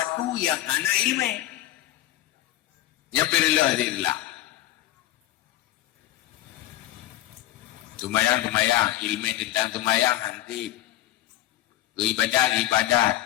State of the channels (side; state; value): right; quieter; 14.6 dB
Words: yang hana ilmu. Yang perilah adalah tumayang, ilmu tentang tumayang nanti